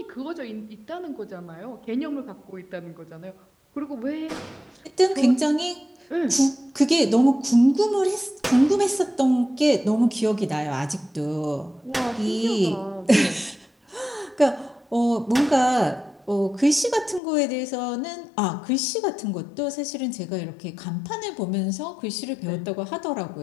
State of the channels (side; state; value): right; drops out; at 17.2 s